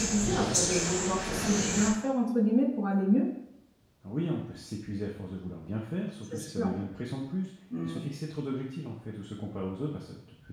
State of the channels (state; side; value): identical; both; correlation 1.00